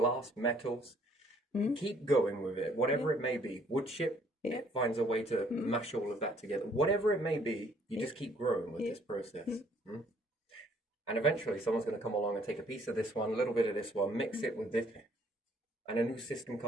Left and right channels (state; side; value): normal; both; correlation 0.63